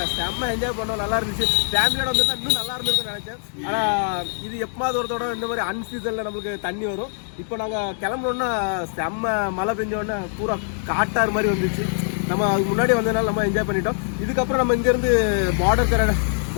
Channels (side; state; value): right; silent; digital silence